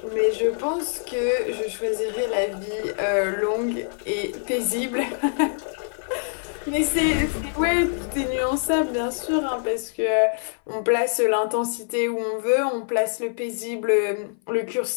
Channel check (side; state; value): right; silent; 59 dB below the other